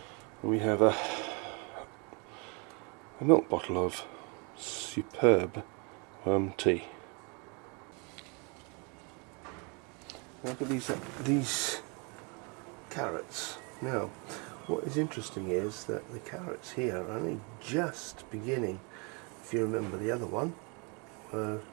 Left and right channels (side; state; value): left; quieter; 32.7 dB